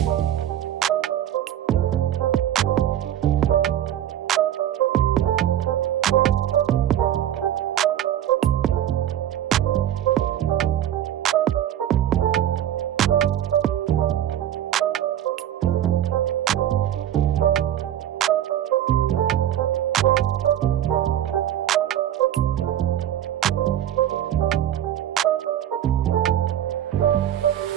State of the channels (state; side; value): quieter; left; 11.4 dB